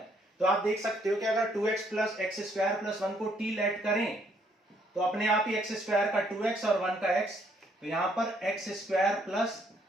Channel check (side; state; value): both; normal; correlation 0.68